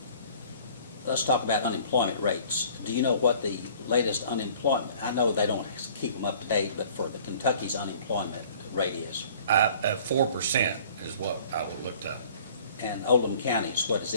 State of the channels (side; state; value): both; inverted; correlation -0.51